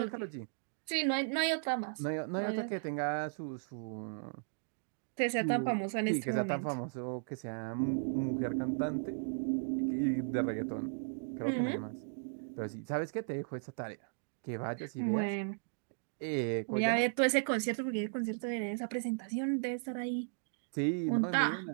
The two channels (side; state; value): left; silent; digital silence